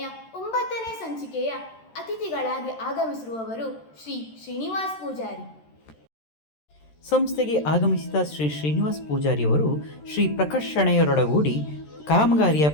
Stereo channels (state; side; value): late; right; 13 ms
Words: 9ನೇ ಸಂಚಿಕೆಯ ಅತಿಥಿಗಳಾಗಿ ಆಗಮಿಸಿರುವವರು ಶ್ರೀ ಶ್ರೀನಿವಾಸ್ ಪೂಜಾರಿ. ಸಂಸ್ಥೆಗೆ ಆಗಮಿಸಿದ ಶ್ರೀ ಶ್ರೀನಿವಾಸ್ ಪೂಜಾರಿಯವರು ಶ್ರೀ ಪ್ರಕಾಶ್ ಶೆಣೈಯವರೊಡಗೂಡಿ ಕಾಮಗಾರಿಯ